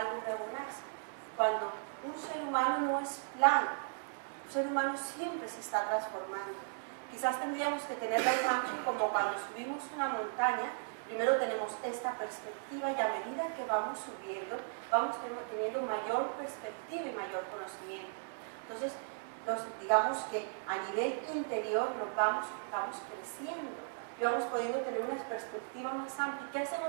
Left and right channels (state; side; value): silent; left; digital silence